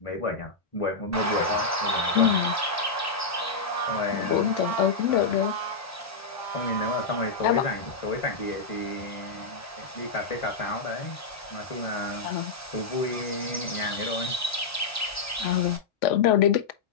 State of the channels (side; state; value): right; quieter; 4.1 dB